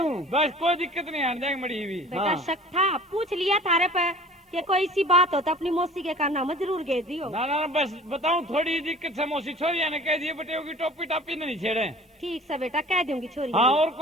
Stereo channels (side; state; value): both; normal; correlation 0.45